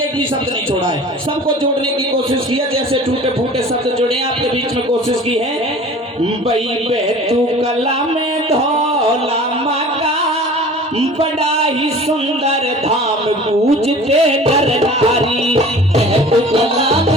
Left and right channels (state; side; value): normal; both; correlation 0.43